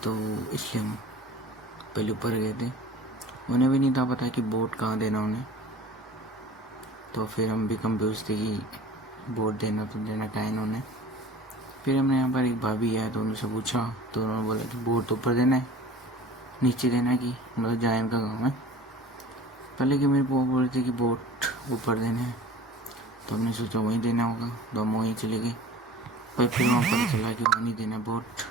तो इसलिए हम पहले ऊपर गए थे। उन्हें भी नहीं था पता कि वोट कहाँ देना उन्हें, तो फिर हम भी कंफ्यूज थे कि वोट देना तो देना कहाँ इन्होंने। फिर हमने यहाँ पर एक भाभी है तो उनसे पूछा तो उन्होंने बोला कि वोट तो ऊपर देना है, नीचे देना है, कि मतलब जहाँ इनका गाँव है। पहले कि मेरे बुआ बोल रहे थे कि वोट ऊपर देना है, तो हमने सोचा वहीं देना होगा, तो हम वहीं चले गए। पर फिर वहाँ पता चला कि वहाँ नहीं देना वोट।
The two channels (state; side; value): normal; both; correlation 0.43